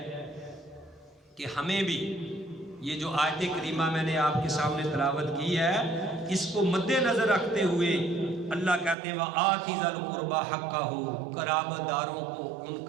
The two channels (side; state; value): left; drops out; at 9.0 s